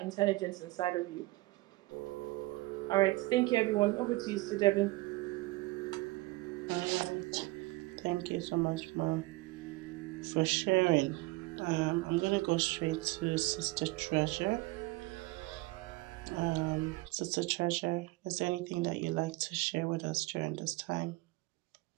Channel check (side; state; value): left; quieter; 21.6 dB